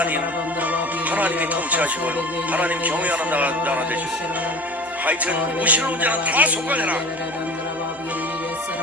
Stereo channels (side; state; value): both; normal; correlation 0.39